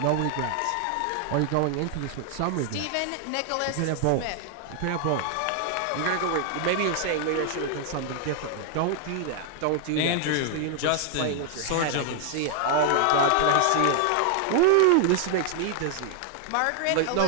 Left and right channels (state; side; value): different; both; correlation 0.00